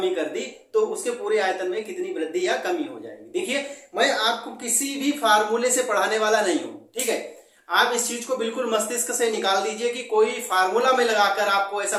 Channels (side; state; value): both; identical; correlation 1.00